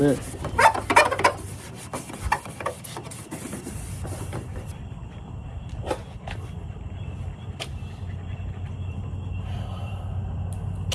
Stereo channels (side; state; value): both; identical; correlation 1.00